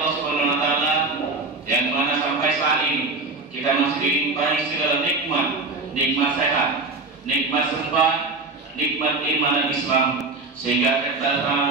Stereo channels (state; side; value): quieter; left; 3.5 dB